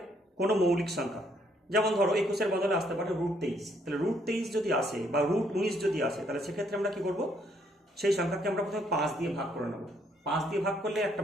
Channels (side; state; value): both; normal; correlation 0.69